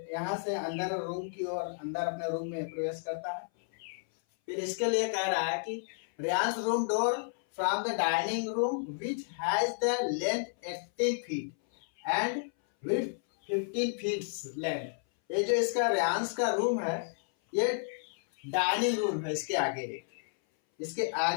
यहाँ से अंदर रूम की ओर अंदर अपने रूम में प्रवेश करता है। फिर इसके लिए कह रहा है कि Reyansh room door from the dining room which has the length 18 feet and width 15 feet length. ये जो इसका रेयांश का रूम है ये डाइनिंग रूम है। इसके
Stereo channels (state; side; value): silent; right; 57 dB below the other